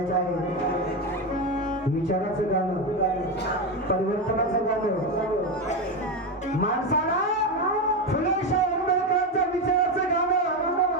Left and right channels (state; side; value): normal; both; correlation 0.13